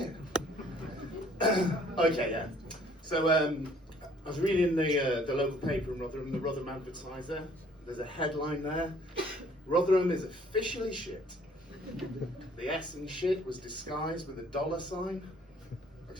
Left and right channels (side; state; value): both; normal; correlation 0.58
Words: Okay, yeah. So I was reading the local paper in Rotherham, the Rotherham Advertiser. There's a headline there. Rotherham is officially shit. The S in shit was disguised with a dollar sign. I can